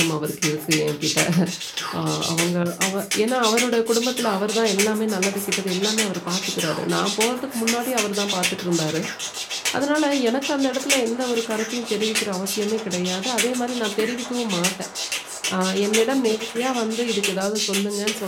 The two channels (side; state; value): both; identical; correlation 1.00